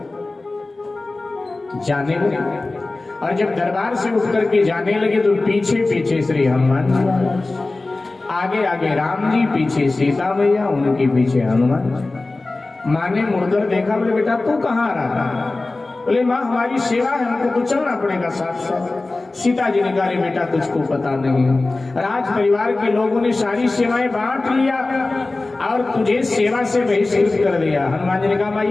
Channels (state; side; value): quieter; right; 3.2 dB